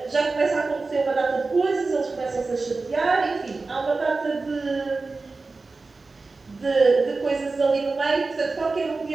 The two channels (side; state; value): left; quieter; 3.8 dB